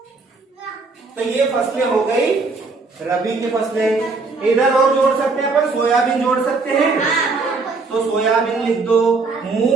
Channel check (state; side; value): quieter; left; 4.0 dB